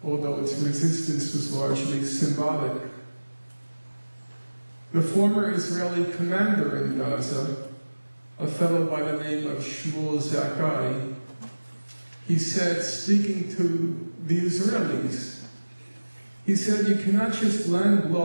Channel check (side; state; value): both; inverted; correlation -1.00